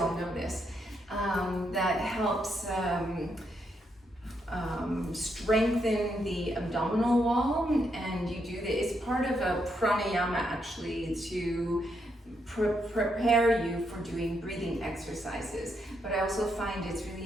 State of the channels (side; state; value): both; normal; correlation 0.79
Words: know this. That helps strengthen the abdominal wall, and you do this. It's part of a pranayama actually to prepare you for doing breathing exercises. But I also find it's